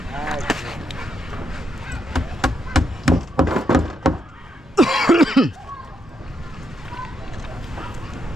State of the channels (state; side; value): normal; both; correlation 0.79